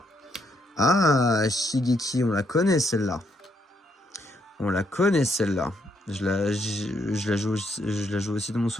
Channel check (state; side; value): normal; both; correlation 0.75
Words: Ah, Shigeki, on la connaît celle-là. Je la joue aussi dans mon